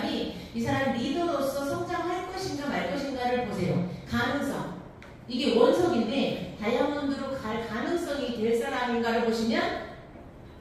이 사람 리더로서 성장할 것인가 말 것인가를 보세요. 가능성. 이게 원석인데 다이아몬드로 갈 가능성이 될 사람인가를 보시면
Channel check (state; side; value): identical; both; correlation 1.00